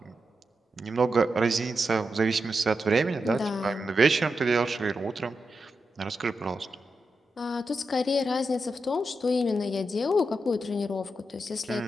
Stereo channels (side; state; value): both; normal; correlation 0.87